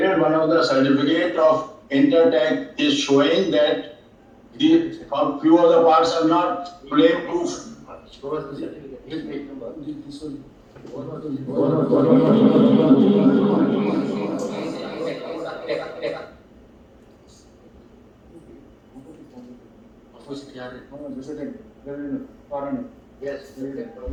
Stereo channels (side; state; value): both; identical; correlation 1.00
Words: one of the certificate of Intertech is showing that a few of the parts are not flame proof. Show us the certificate. Which page number? This one. Opposite yard. Yes.